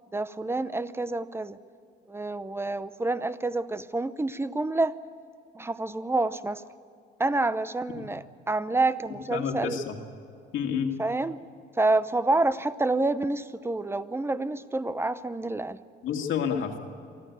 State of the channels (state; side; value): normal; both; correlation 0.77